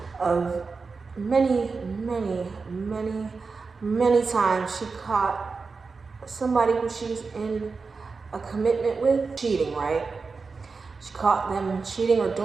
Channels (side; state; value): left; quieter; 4.5 dB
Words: of many times she caught somebody who she's in a commitment with cheating, right? She caught them cheating or